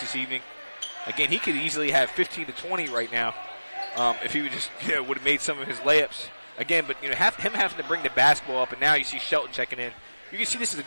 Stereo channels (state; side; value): inverted; both; correlation -0.99